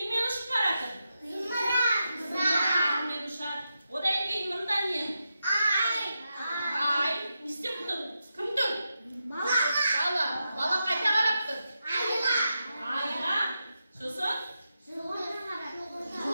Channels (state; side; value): inverted; both; correlation -0.87